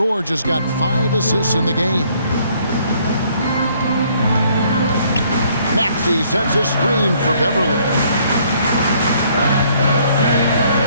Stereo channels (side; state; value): both; inverted; correlation -0.64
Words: has got 5 assists in the game. Maxey sets a screen for Beverley.